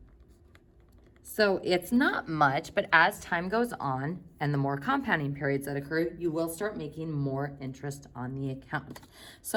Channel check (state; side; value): identical; both; correlation 1.00